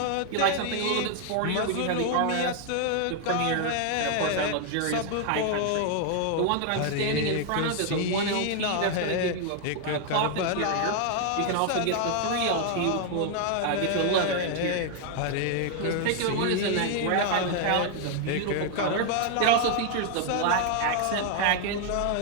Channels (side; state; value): both; different; correlation 0.00